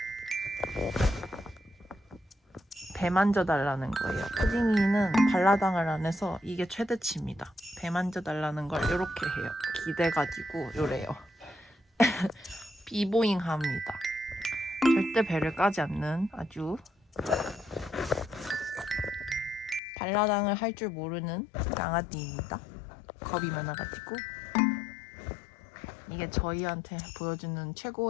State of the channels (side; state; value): right; drops out; at 19.8 s